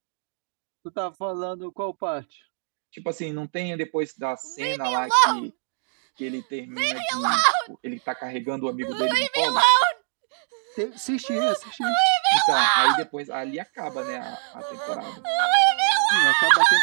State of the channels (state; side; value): silent; left; digital silence